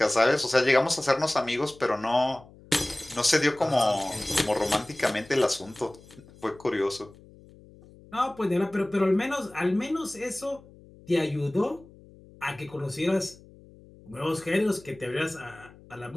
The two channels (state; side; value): noise; left; hum, 23 dB below the sound